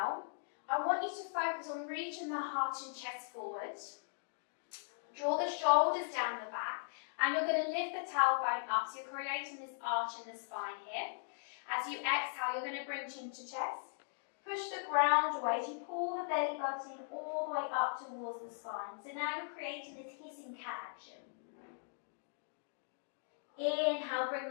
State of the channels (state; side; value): silent; right; digital silence